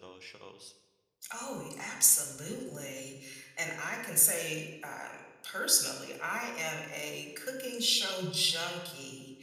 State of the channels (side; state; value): both; identical; correlation 1.00